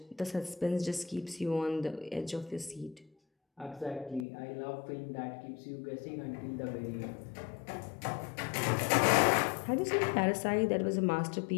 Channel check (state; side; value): drops out; right; at 4.2 s